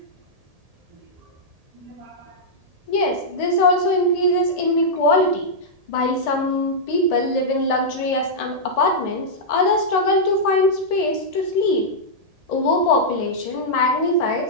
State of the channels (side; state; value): left; late; 1.7 ms